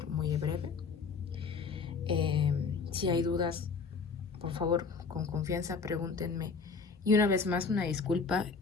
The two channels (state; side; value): quieter; right; 4.9 dB